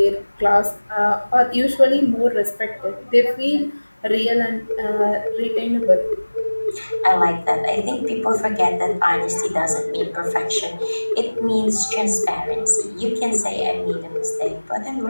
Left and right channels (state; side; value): inverted; both; correlation -1.00